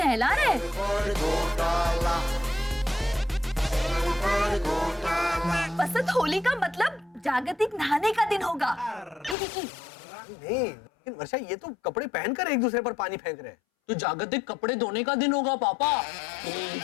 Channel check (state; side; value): drops out; right; at 9.3 s